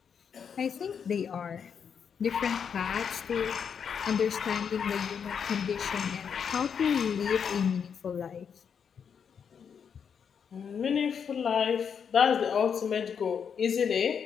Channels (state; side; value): quieter; right; 7.1 dB